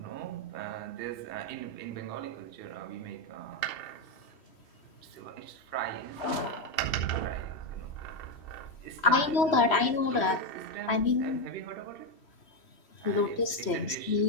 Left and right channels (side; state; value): right; late; 3.1 ms